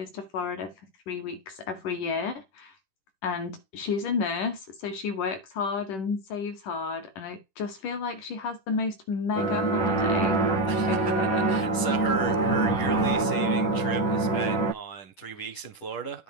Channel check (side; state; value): right; late; 10 ms